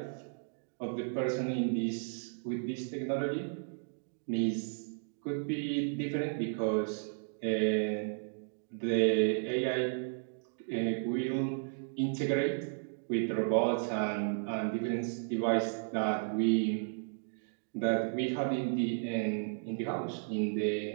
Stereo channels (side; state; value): left; silent; digital silence